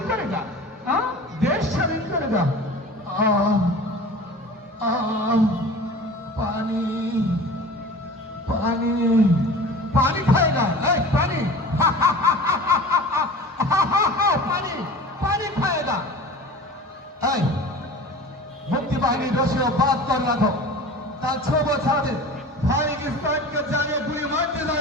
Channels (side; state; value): both; normal; correlation 0.39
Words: করে যা, হ্যাঁ দেশ স্বাধীন করে যা। পানি পানি পানি খায়গা, এই পানি পানি পানি খায়গা। এই মুক্তি বাহিনীর রশিও বাদ कर রাখো, তার 6 বছর আগে পাকিস্তানকে জানিয়ে গুলি মারতে